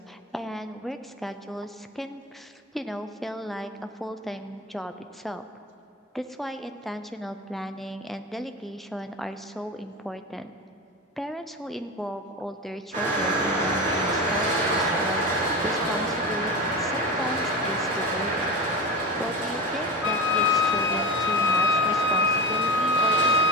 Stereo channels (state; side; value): normal; both; correlation 0.25